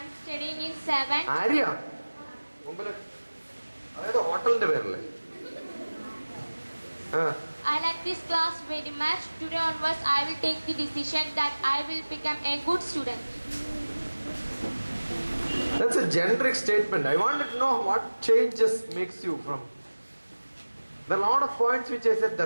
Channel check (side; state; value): both; inverted; correlation -1.00